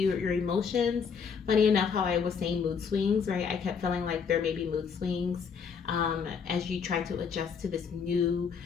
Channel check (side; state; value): right; quieter; 6.2 dB